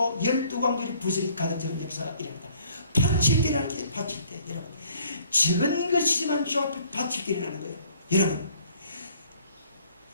12광들이 부스리 가득 차는 역사가 일어납니다. 바칠 때라는 게 바칠 때 여러분 적은 것이지만 주 앞에 바칠 때 일어나는 거예요. 여러분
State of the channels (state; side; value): inverted; both; correlation -0.59